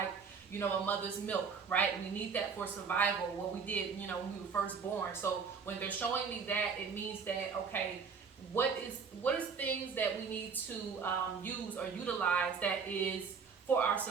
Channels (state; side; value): quieter; left; 5.7 dB